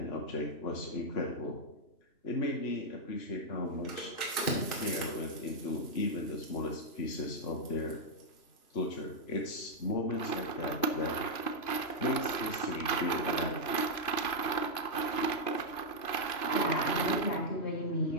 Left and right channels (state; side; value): late; right; 2.9 ms